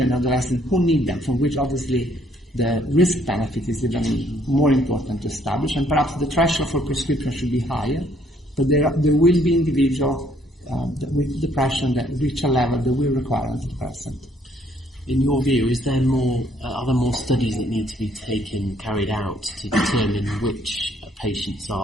and adolescents who need them, for which obviously the risk benefit is even more important to establish, and perhaps the threshold for prescription should be higher, but there will be individuals with depression that reach a level that will require antidepressant. In your view, are there more studies that need to be carried out to determine which patients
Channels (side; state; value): both; normal; correlation 0.66